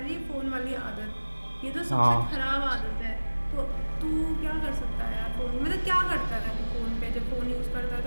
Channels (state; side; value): inverted; both; correlation -1.00